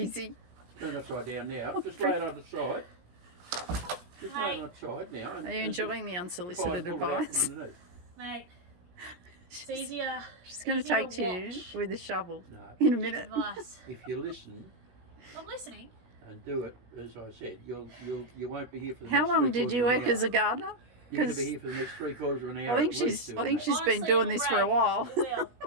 Turn it upside down now. Just lay it on the side. Just lay it on the side now. Are you enjoying the unsolicited pull it out from advice? underneath. Mate, it's easier. She's going to easier take to you watch. with a shovel No, in a minute. Advice. if you listen I'm listening. and do it as I said, you won't be here for the How next long 3/4 did you of an work as hour. a gardener? You're going to 'Cause be here for the next 3/4 of an I hour. think at least she's doing been Honestly, doing it'll this for a break. while. It will.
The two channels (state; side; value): late; left; 17 ms